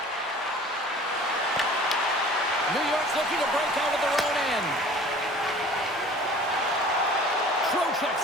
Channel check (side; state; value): both; normal; correlation 0.46